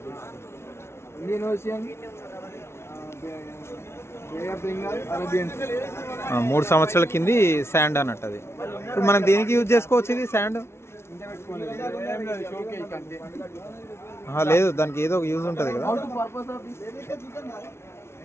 Indian Ocean, bay of Bengal, Arabian. 3 సంవత్సరాల కింది శాండ్ అన్నట్టు అది. ఇప్పుడు మనం దేనికి యూజ్ చేసుకోవచ్చు ఇది శాండ్? లేదు, దానికి ఏదో ఒక యూజ్ ఉంటుంది కదా.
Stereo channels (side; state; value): right; late; 0.12 ms